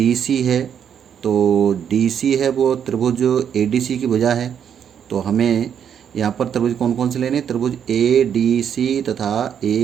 सी है। तो डी सी है वो त्रिभुज ए डी सी की भुजा है। तो हमें यहाँ पर त्रिभुज कौन कौन से लेने, त्रिभुज ए डी सी तथा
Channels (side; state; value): left; quieter; 8.4 dB